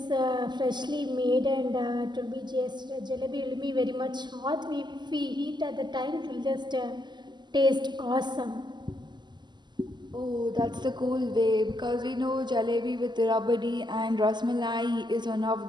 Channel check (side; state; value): left; late; 0.21 ms